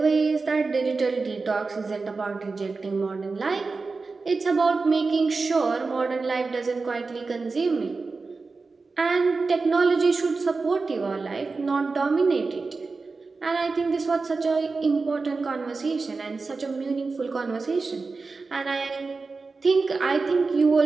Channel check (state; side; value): quieter; left; 4.1 dB